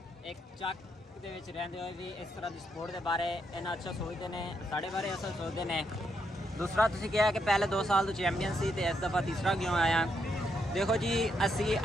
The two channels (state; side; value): normal; both; correlation 0.78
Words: ਇੱਕ ਚੱਕ ਦੇ ਵਿੱਚ ਰਹਿੰਦੇ ਹੋਏ ਵੀ ਇਸ ਤਰ੍ਹਾਂ ਦੀ ਸਪੋਰਟ ਦੇ ਬਾਰੇ ਇੰਨਾ ਅੱਛਾ ਸੋਚਦੇ ਨੇ ਸਾਡੇ ਬਾਰੇ ਅਸਲ ਸੋਚਦੇ ਨੇ ਦੂਸਰਾ ਤੁਸੀਂ ਕਿਹਾ ਕਿ ਪਹਿਲੇ 2 ਸਾਲ ਤੋਂ ਚੈਂਪੀਅਨ ਸੀ ਤੇ ਇਸ ਦਫਾ ਤੀਸਰਾ ਕਿਉਂ ਆਇਆ ਦੇਖੋ ਜੀ ਅਸੀਂ